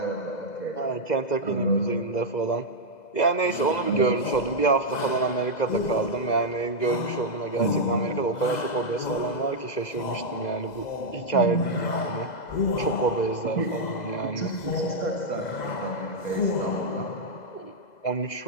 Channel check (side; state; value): right; late; 2.0 ms